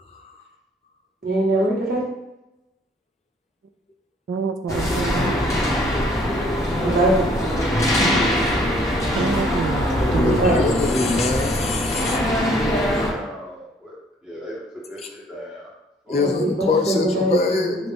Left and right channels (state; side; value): normal; both; correlation 0.60